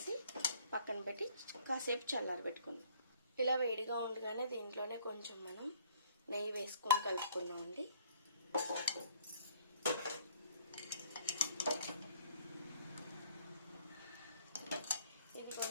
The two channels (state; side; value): inverted; both; correlation -0.59